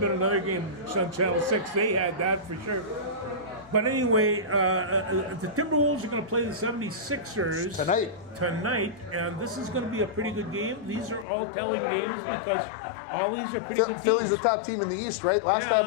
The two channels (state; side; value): drops out; right; at 11.2 s